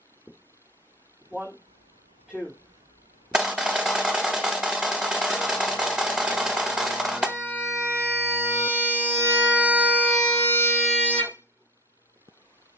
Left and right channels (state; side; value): normal; both; correlation 0.32